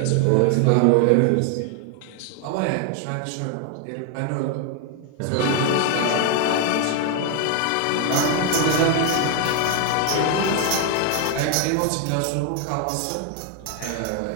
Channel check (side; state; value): both; different; correlation 0.00